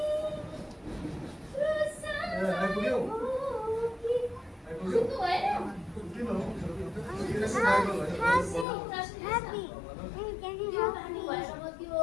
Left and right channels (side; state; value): right; drops out; at 8.7 s